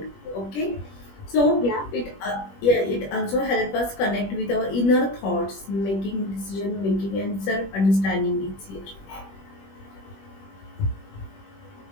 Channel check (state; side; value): late; right; 21 ms